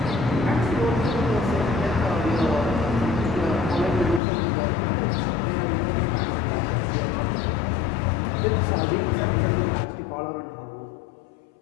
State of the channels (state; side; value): drops out; right; at 4.2 s